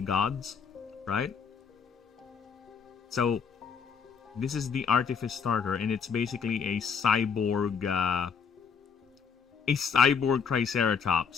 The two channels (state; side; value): quieter; right; 6.3 dB